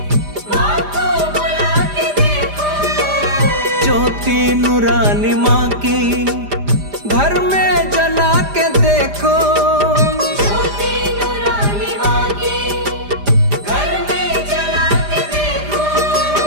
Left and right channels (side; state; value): left; late; 5.0 ms